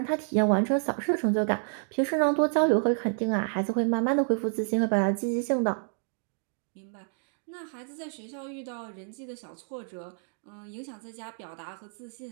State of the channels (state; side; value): silent; left; 56 dB below the other